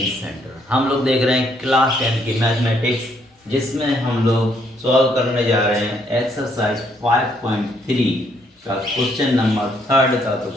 centre. हम लोग देख रहे हैं क्लास 10 की मैथमेटिक्स, जिसमें हम लोग सॉल्व करने जा रहे हैं एक्सरसाइज 5.3 का क्वेश्चन नंबर 3 का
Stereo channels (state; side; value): normal; both; correlation 0.69